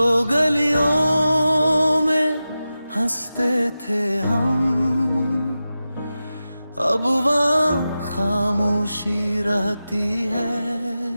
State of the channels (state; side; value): inverted; both; correlation -0.93